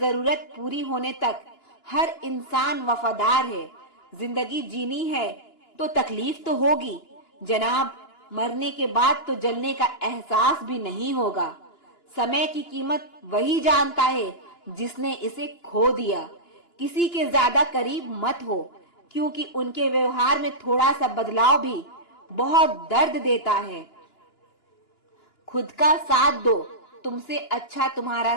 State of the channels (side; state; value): right; late; 2.9 ms